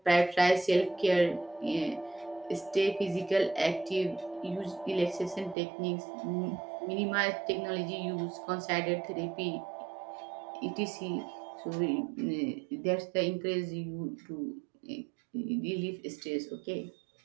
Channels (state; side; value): drops out; left; at 5.6 s